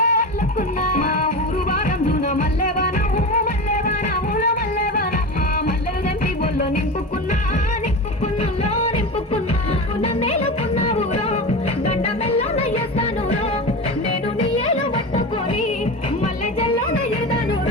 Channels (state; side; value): normal; both; correlation 0.25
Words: అల్లుకున్నా మా ఊరు వారందున మల్లెవానము మల్లెవానముల మల్లెవాన మా మల్లెలు దంపి బొల్లో నింపుకున్నా నింపుకున్నులో నింపుకున్నా నన్నేలుకున్నా ఊరో గండ మెల్లో నయ్యేస్తాను రో నేను నీ ఏలు పట్టుకొని మల్లె జల్లో నయ్యేదాను